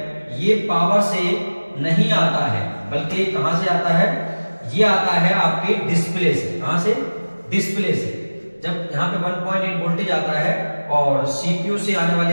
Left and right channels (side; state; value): both; inverted; correlation -1.00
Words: ये पावर से नहीं आता है, बल्कि कहां से आता है, ये आता है आपके डिस्प्ले से। कहां से? डिस्प्ले से। जब यहाँ पे 1.8 वोल्टेज आता है और सीपीयू से आने